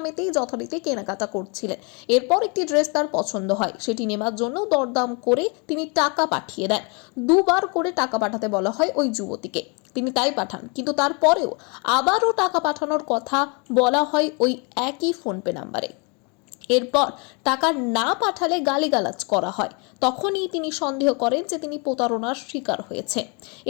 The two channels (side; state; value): right; quieter; 32.8 dB